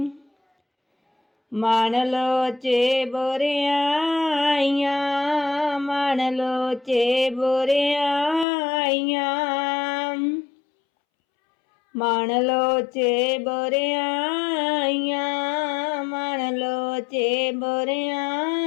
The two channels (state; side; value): drops out; right; at 8.5 s